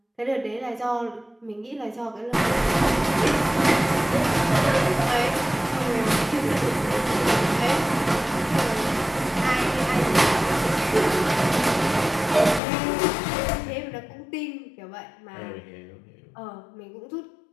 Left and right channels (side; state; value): right; drops out; at 12.6 s